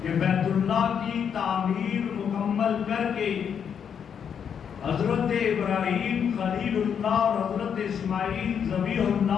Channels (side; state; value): right; quieter; 7.7 dB